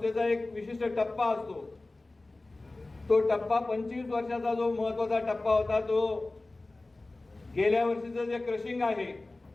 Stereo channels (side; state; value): right; quieter; 3.0 dB